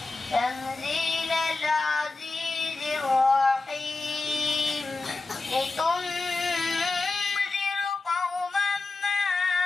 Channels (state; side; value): quieter; right; 3.6 dB